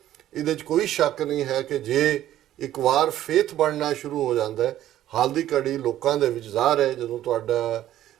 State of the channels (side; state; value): left; quieter; 12.8 dB